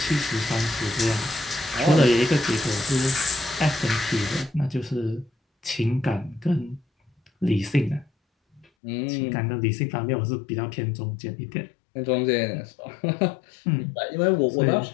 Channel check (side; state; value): right; drops out; at 8.7 s